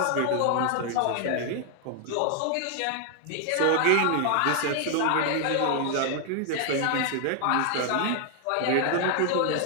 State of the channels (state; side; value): different; both; correlation 0.00